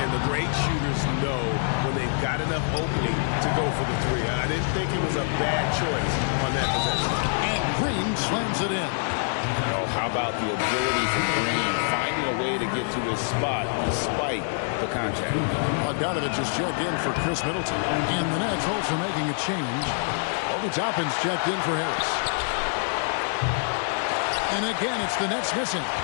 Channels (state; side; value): silent; right; digital silence